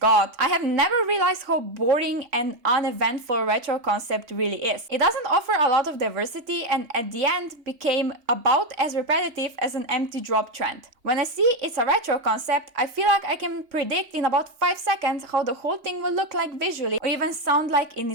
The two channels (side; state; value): left; late; 3.6 ms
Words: I have never realized how boring and uneventful retro concept really is. It doesn't offer a lot of diversity, and at the end became about as repetitive as an empty drop trend. When I see it's a retro concept, I feel like I can predict in about 5 seconds how the whole thing will look like visually or even sound like in